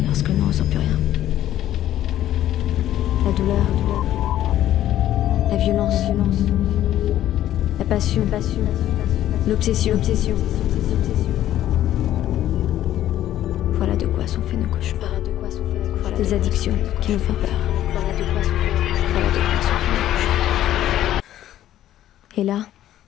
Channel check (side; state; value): right; quieter; 12.6 dB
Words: lorsque l'on ne ressent plus rien? La douleur, la violence, la passion, l'obsession. Voilà de quoi sont faits nos cauchemars. Des addictions qui nous font peur. Voilà de quoi sont faits nos cauchemars. Et là,